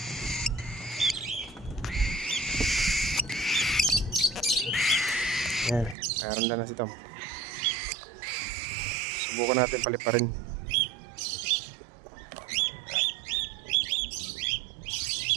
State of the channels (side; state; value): left; drops out; at 6.0 s